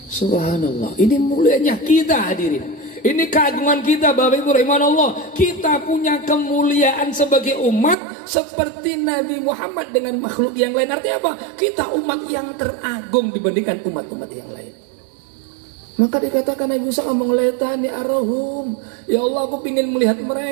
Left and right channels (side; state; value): left; drops out; at 8.0 s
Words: Subhanallah, ini mulianya kita hadirin. Ini keagungan kita Bapak Ibu rahimahullah. Kita punya kemuliaan sebagai umat seperti Nabi Muhammad dengan makhluk yang lain. Artinya apa? Kita umat yang teragung dibandingkan umat-umat yang lain. Maka dikatakan Nabi Musa ngomong letani arahum, ya Allah aku ingin melihat